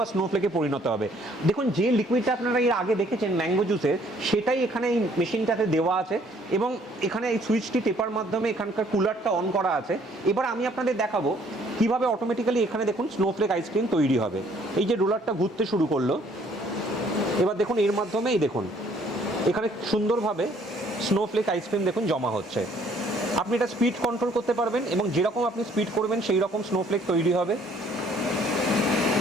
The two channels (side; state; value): both; normal; correlation 0.61